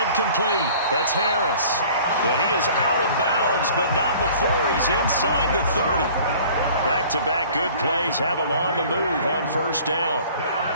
complete. That's Harris. And he is out of bounds, but not before he's inside the 30. Back-to-back good plays have him on the move on 1st down.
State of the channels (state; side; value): inverted; both; correlation -0.49